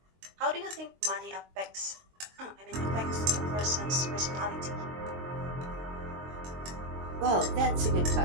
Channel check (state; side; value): late; left; 22 ms